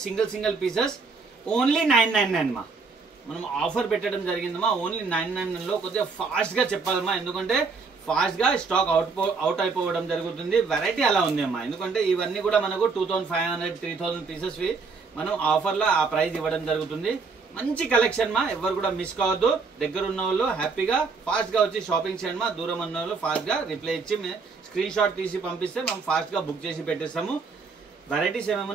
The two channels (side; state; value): left; quieter; 4.7 dB